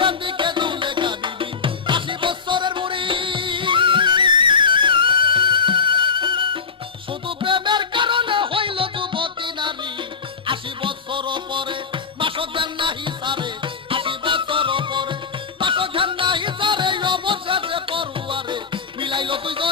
এদিকে দুলেখা বিবি ৮০ বছরের বুড়ি শুধু প্রেমের কারণে হইল যুবতী নারী ৮০ বছর পরে মাসক জ্ঞান নাহি সারে ৮০ বছর পরে মাসক জ্ঞান নাহি সারে অবশেষে পড়ুয়ারে মিলাইল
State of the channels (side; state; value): right; quieter; 5.6 dB